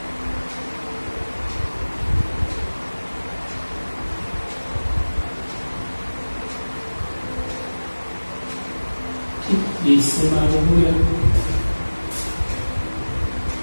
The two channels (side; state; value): both; inverted; correlation -1.00